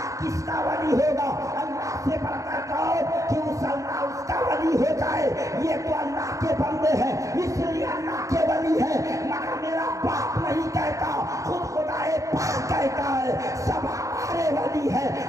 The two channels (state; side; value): late; left; 0.16 ms